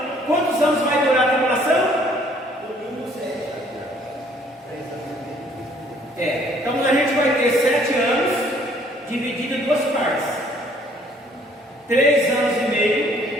Quantos anos vai durar a tribulação? Domingo 7. Então a gente vai ter 7 anos, dividido em duas partes. 3 anos e meio,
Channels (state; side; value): normal; both; correlation 0.61